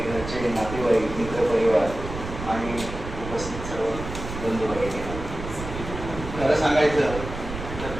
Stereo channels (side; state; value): right; noise; rumble, 9 dB below the sound